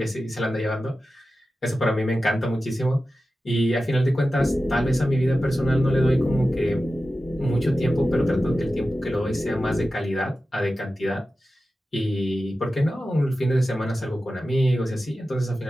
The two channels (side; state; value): both; normal; correlation 0.93